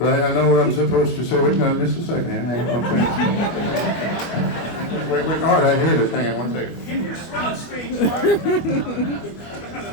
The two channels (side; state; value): right; late; 25 ms